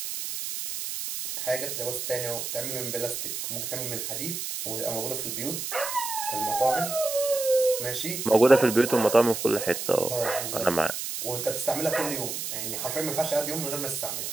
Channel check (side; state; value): right; noise; hiss, 5 dB below the sound